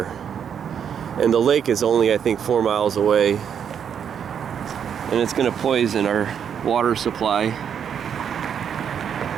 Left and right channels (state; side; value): quieter; left; 8.0 dB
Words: And the lake is only, I think, 4 miles away. And it's going to poison our water supply.